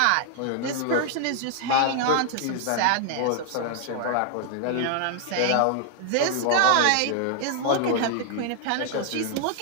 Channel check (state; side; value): different; both; correlation 0.00